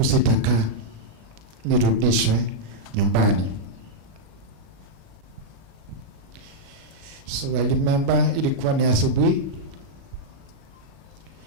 sitakaa, nirudishwe nyumbani. So I remember ilikuwa ni asubuhi.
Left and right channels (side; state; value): left; late; 37 ms